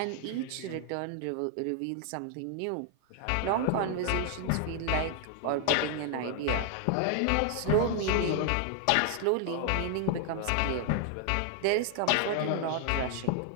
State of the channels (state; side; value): different; both; correlation 0.00